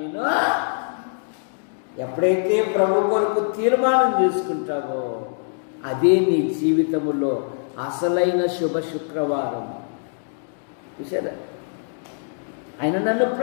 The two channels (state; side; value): silent; right; digital silence